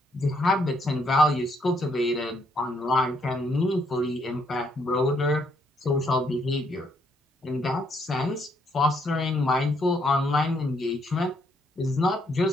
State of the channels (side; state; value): both; normal; correlation 0.72